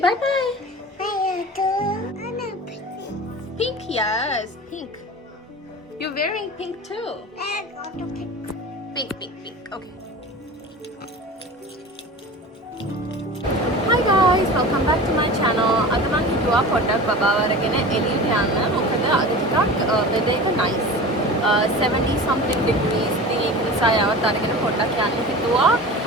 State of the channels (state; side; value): normal; both; correlation 0.34